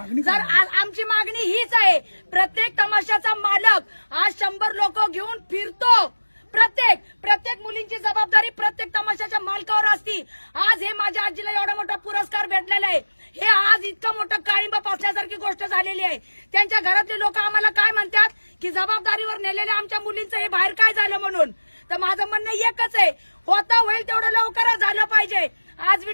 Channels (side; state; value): both; inverted; correlation -1.00